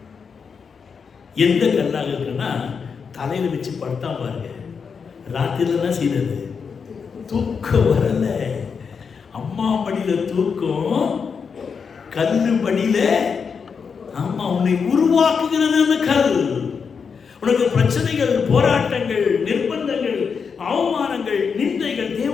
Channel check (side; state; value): right; quieter; 6.0 dB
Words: எந்த கல்லாக இருக்குன்னா, தலையில வச்சு படுத்தா பாருங்க, ராத்திரில என்ன செய்யறது? தூக்கம் வரல. அம்மா படியில தூக்கம், கல்லு படியில ஆமா உன்னை உருவாக்குகிறது அந்த கல். உனக்கு பிரச்சனைகள், போராட்டங்கள், நிர்பந்தங்கள், அவமானங்கள், நிந்தைகள்,